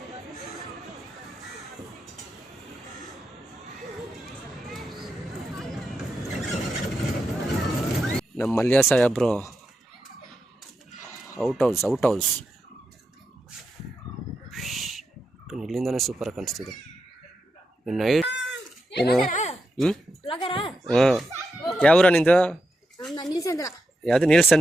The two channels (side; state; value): both; normal; correlation 0.86